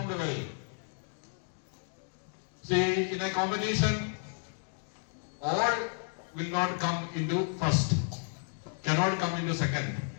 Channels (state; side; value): silent; right; 56 dB below the other